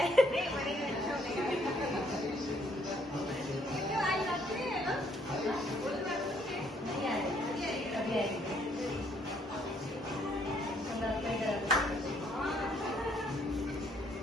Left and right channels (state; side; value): normal; both; correlation 0.67